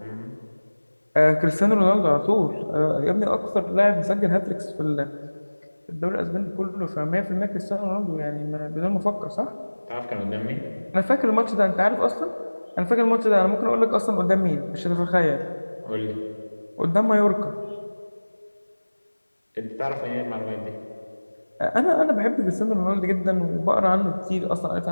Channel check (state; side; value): inverted; both; correlation -1.00